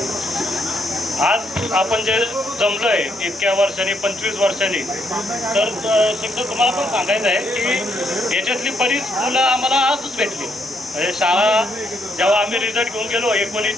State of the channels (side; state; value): both; normal; correlation 0.74